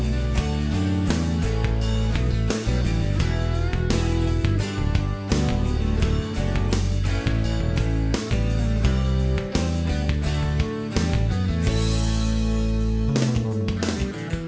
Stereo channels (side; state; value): both; identical; correlation 1.00